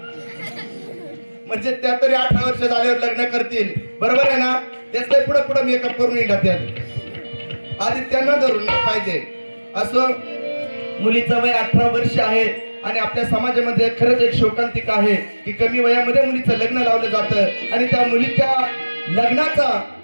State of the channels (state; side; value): inverted; both; correlation -1.00